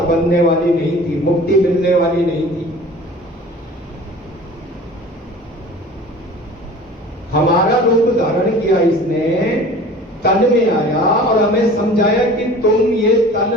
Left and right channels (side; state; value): both; normal; correlation 0.43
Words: बनने वाली नहीं थी, मुक्ति मिलने वाली नहीं थी। हमारा रूप धारण किया इसने, तन में आया और हमें समझाया कि तुम ये